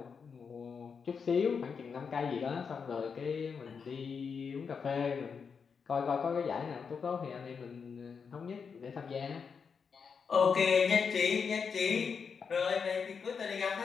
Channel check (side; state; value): right; quieter; 6.0 dB